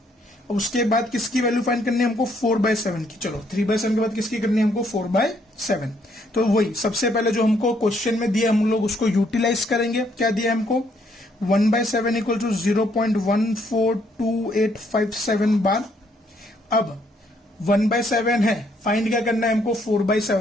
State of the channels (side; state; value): both; normal; correlation 0.70